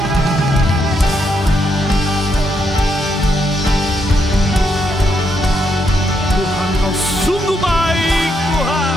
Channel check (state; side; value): normal; both; correlation 0.78